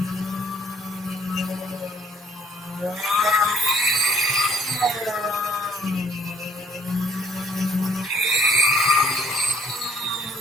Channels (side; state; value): both; normal; correlation 0.60